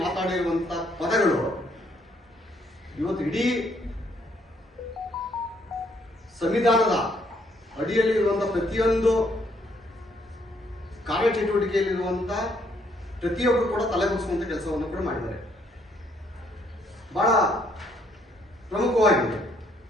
ಮಾತಾಡಿರುವಂತ ಪದಗಳು ಇವತ್ತು ಇಡೀ ಸಂವಿಧಾನದ ಅಡಿಯಲ್ಲಿ ಇರುವಂತಹ ಪ್ರತಿಯೊಂದು ಕಾರ್ಯಚಟುವಟಿಕೆಯಲ್ಲಿರುವಂತ ಪ್ರತಿಯೊಬ್ಬರು ಕೂಡ ತಲೆಬಗ್ಗಿಸುವಂತ ಕೆಲಸವನ್ನು ಕೂಡ ಮಾಡಿದ್ದಾರೆ. ಬಹಳ ಪ್ರಮುಖವಾಗಿದೆ.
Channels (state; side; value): normal; both; correlation 0.69